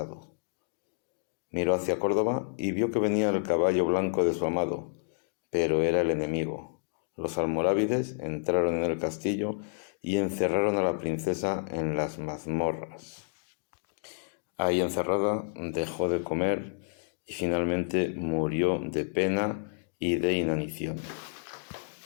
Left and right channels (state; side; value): silent; right; digital silence